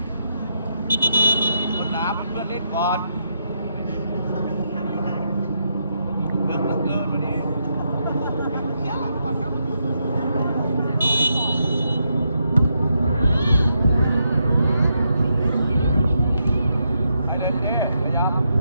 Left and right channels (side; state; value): both; inverted; correlation -0.80